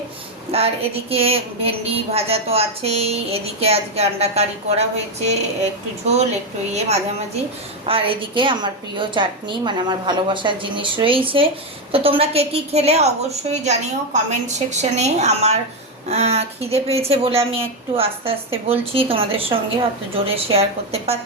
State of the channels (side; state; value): both; normal; correlation 0.07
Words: আর এদিকে ভেন্ডি ভাজা তো আছেই, এদিকে আজকে আন্ডা কারি করা হয়েছে, একটু ঝোল একটু মাঝামাঝি। আর এদিকে আমার প্রিয় চাটনি, মানে আমার ভালোবাসার জিনিস রয়েছে। তো তোমরা কে কী খেলে অবশ্যই জানিও কমেন্ট সেকশনে। আমার খিদে পেয়েছে বলে আমি একটু আস্তে আস্তে বলছি তোমাদের সঙ্গে, অত জোরে শেয়ার করতে